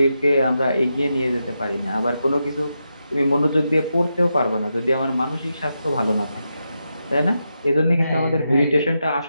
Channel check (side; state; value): both; inverted; correlation -0.87